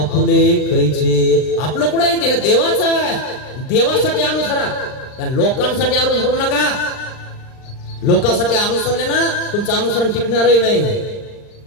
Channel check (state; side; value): late; right; 39 ms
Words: कैचे. आपलं कुठे आहे? देह देवाचा आहे. देवासाठी अनुसरा, त्या लोकांसाठी अनुसरू नका. लोकांसाठी अनुसरले ना तुमचं अनुसरण टिकणारही नाही.